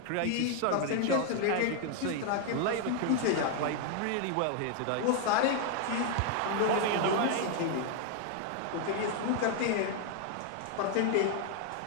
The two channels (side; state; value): both; different; correlation 0.00